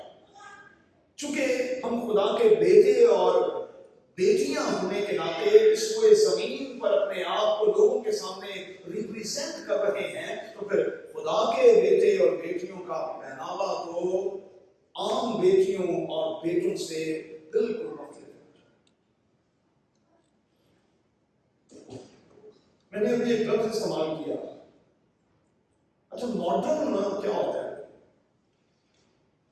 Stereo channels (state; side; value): identical; both; correlation 1.00